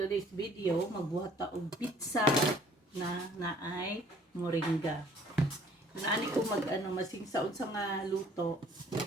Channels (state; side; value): normal; both; correlation 0.56